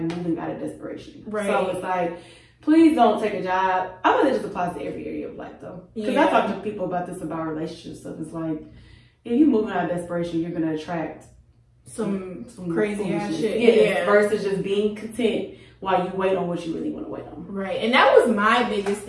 moving out of desperation. Right. So it's like, please don't take a job. I know that just applies to every area of life though. Because I talk to people about this, about relationship stuff. It's like, if you're moving out of desperation, you're gonna attract some crazy ass shit. Versus just being content while you wait on what you really want to wait on. Right. And that was my biggest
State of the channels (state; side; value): identical; both; correlation 1.00